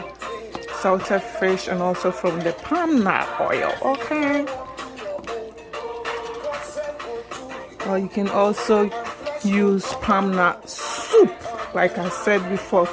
salted fish and also from the palm nut oil, okay? Or you can also use palm nut soup, like I said before,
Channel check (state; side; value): identical; both; correlation 1.00